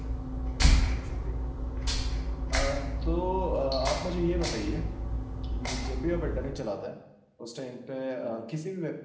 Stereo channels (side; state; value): both; identical; correlation 1.00